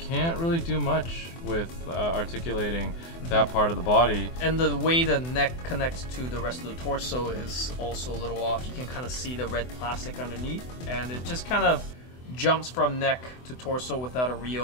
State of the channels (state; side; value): late; right; 24 ms